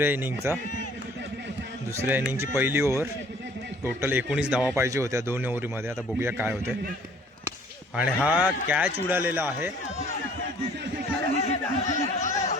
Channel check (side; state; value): both; normal; correlation 0.55